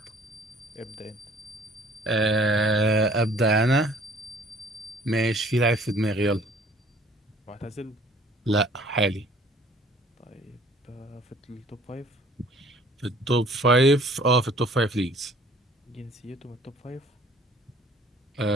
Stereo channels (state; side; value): normal; both; correlation 0.55